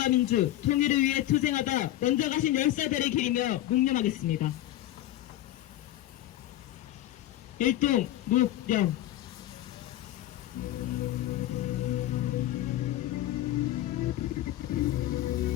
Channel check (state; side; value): quieter; right; 14.0 dB